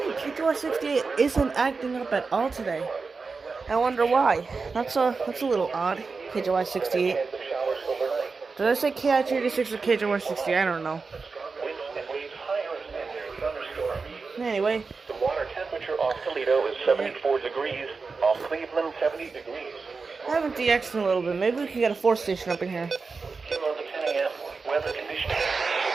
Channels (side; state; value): left; quieter; 4.5 dB